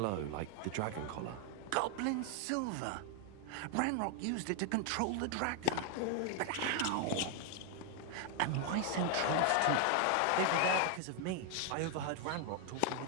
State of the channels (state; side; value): different; both; correlation 0.00